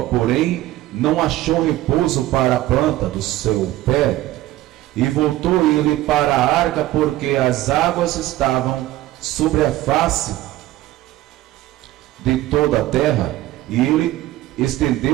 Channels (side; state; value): left; quieter; 15.6 dB